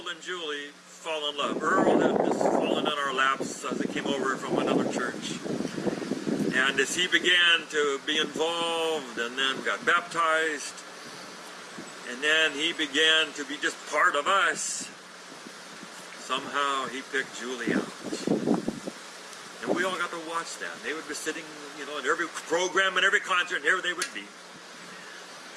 and Julie fall in love. Earl had just fallen in our laps as he came over from another church. And as he began to be involved and then got baptized, and then he began to be just part of us, somehow he picked Julie out. And we all got to watch that. They would be sitting, in every program and every concert, and here they would be.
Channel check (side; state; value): both; identical; correlation 1.00